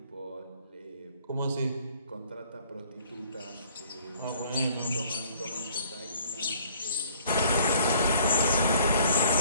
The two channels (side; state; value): both; inverted; correlation -0.58